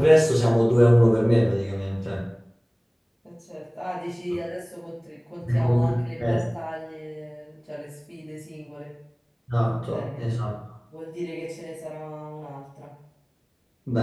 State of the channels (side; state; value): both; identical; correlation 1.00